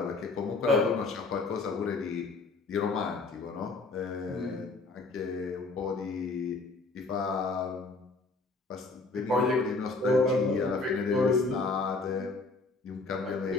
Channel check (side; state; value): right; quieter; 3.6 dB